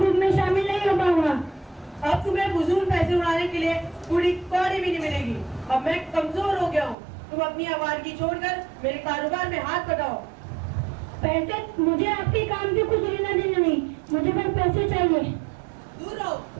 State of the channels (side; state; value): left; drops out; at 7.0 s